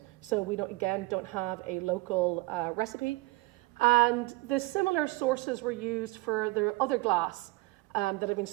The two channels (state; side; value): quieter; left; 21.6 dB